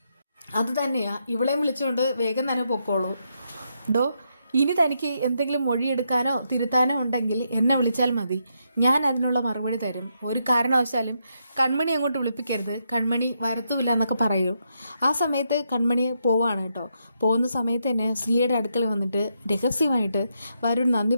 അത് തന്നെയാ, ഇവളെയും വിളിച്ചുകൊണ്ട് വേഗം തന്നെ പൊക്കോളൂ. ഇനി തനിക്ക് എന്തെങ്കിലും മൊഴിയെടുക്കാനോ തിരുത്താനോ ഉണ്ടെങ്കിൽ എന്നെ വിളിച്ചാൽ മതി, ഞാൻ അതിനുള്ള മറുപടി തരും. ഒരു കാരണവശാലും കൺമണി അങ്ങോട്ട് വിളിപ്പിക്കരുത്, കൺമണി വരത്തുമില്ല എന്നൊക്കെ പറയൂ. ആ സമയത്ത് കൺമണി പോവാണ് കേട്ടോ. പോകുന്ന സമയത്ത് തന്നെ സിയുടെ അടുക്കൽ വന്നിട്ട് രഹസ്യമായിട്ട് വരുൺ നന്ദി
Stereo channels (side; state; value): both; inverted; correlation -0.80